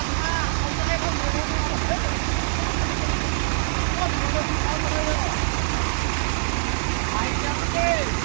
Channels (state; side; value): silent; left; digital silence